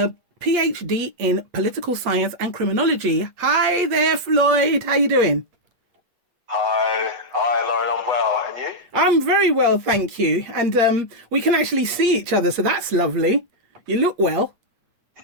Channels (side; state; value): left; late; 8.4 ms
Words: PhD in political science and criminology. Hi there, Floyd. How you doing? Hi, Lauren. I'm well, and you? I'm very well, thank you. And we can actually see each other, so that's lovely. You look well.